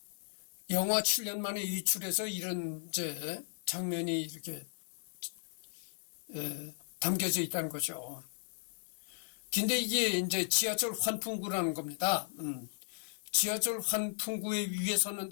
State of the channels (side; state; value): right; silent; digital silence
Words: 7년 만에 유출해서 이런 장면이 이렇게 담겨져 있다는 거죠. 근데 이게 이제 지하철 환풍구라는 겁니다. 지하철 환풍구에 위에